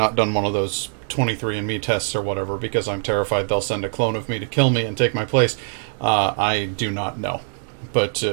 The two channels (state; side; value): silent; left; 64 dB below the other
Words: done one of those 23andMe tests or whatever, because I'm terrified they'll send a clone of me to kill me and take my place. I do not know. But